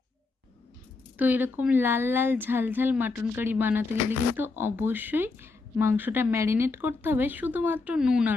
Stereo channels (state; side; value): quieter; right; 3.8 dB